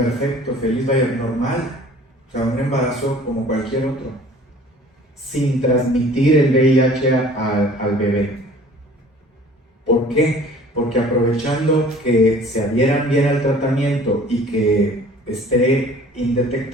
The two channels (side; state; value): both; normal; correlation 0.49